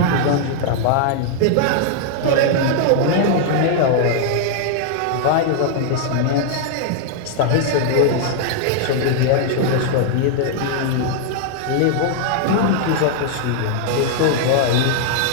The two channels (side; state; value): both; different; correlation 0.00